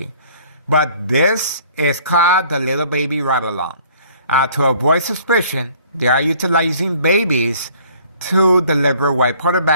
But this is called the little baby ride-along. To avoid suspicion, they are utilizing babies to deliver white powder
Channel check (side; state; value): both; inverted; correlation -0.56